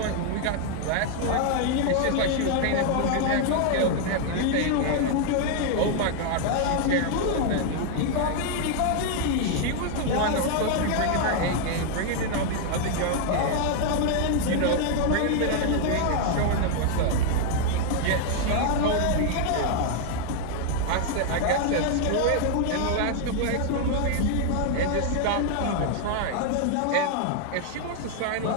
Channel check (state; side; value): different; both; correlation 0.00